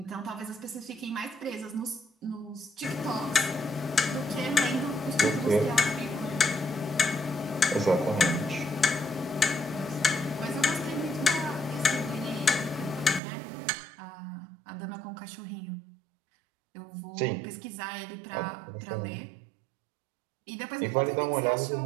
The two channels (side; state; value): left; drops out; at 13.2 s